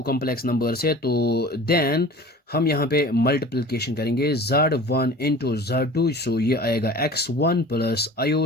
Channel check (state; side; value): normal; both; correlation 0.42